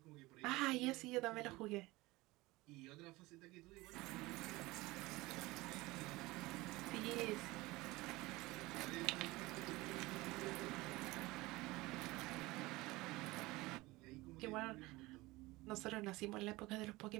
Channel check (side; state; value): left; quieter; 20.8 dB